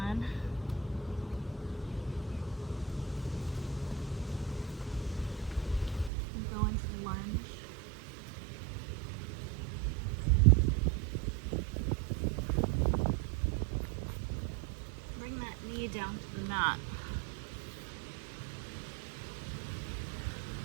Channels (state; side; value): drops out; left; at 6.1 s